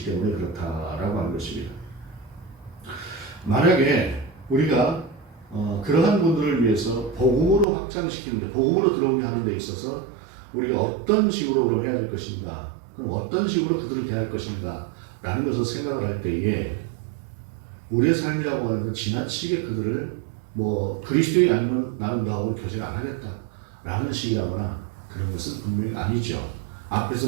때문에 그렇다라고 하는 것입니다. 만약에 우리가 그러한 분들을 위해서 복음으로 확장시키는데 복음으로 들어오게 하는 데 있어서 우리가 어떤 식으로 그럼 해야 될 것인가 그럼 어떤 식으로 그들을 대할 것인가 라는 것을 생각을 할 때에 우리의 삶이라고 하는 건 지나치게 그들을 그리스도인이 아니면 나는 너하고 교제를 안 하겠다 라는 식이라거나 그런 것은 분명히 아니죠.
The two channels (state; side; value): drops out; left; at 7.7 s